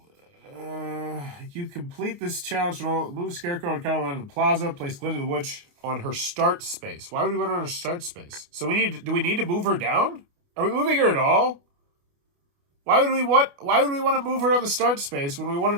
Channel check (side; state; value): left; late; 29 ms